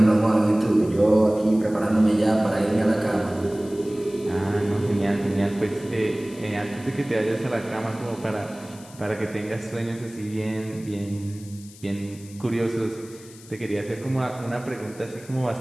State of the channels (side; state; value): left; noise; hiss, 21 dB below the sound